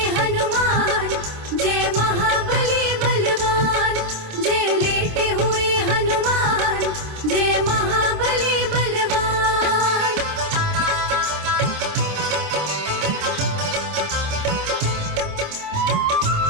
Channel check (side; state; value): left; late; 26 ms